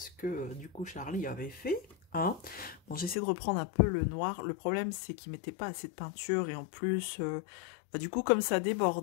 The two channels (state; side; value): drops out; right; at 3.2 s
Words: que, du coup, Charlie avait fait. Hein. Bon, j'essaie de reprendre un peu le noir. Le problème, c'est qu'il mettait pas assez de peinture et en plus, du coup, comme ça